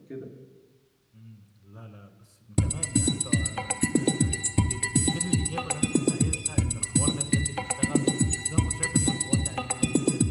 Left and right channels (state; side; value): identical; both; correlation 1.00